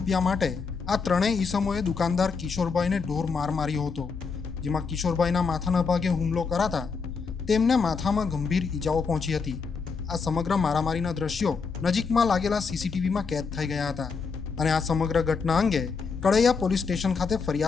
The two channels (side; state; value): right; quieter; 5.1 dB